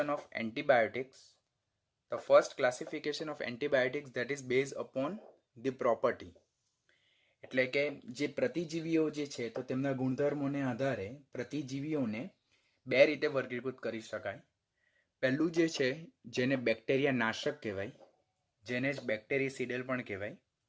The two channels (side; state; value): both; identical; correlation 1.00